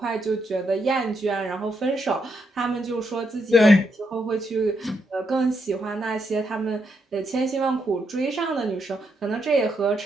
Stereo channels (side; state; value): both; normal; correlation 0.79